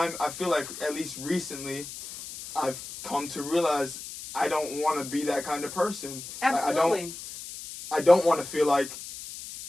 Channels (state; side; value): noise; left; hiss, 11 dB below the sound